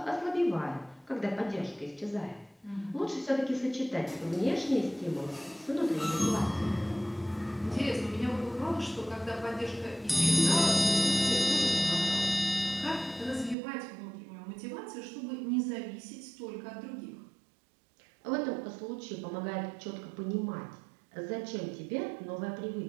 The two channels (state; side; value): drops out; left; at 13.6 s